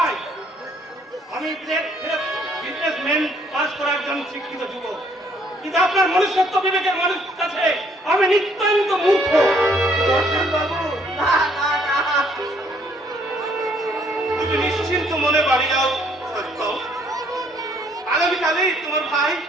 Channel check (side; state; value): both; normal; correlation 0.64